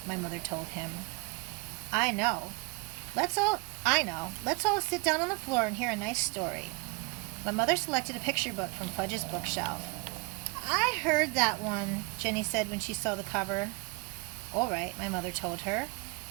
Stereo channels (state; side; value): quieter; left; 28.5 dB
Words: my mother told him. I know. Let's all sit down on the floor and hear a nice story." My mother selected a picture book from Fudge's bookshelf. "I heard that one," Jenny said when she saw the cover. "All right," my mother told her.